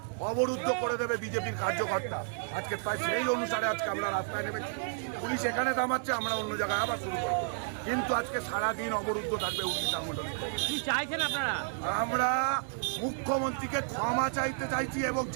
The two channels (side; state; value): left; silent; digital silence